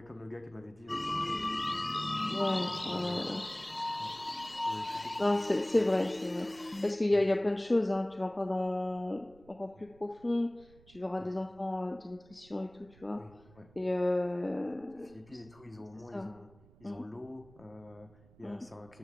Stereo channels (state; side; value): noise; right; rumble, 25 dB below the sound